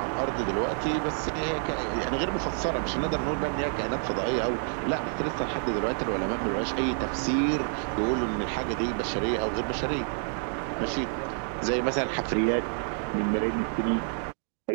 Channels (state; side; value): silent; left; 59 dB below the other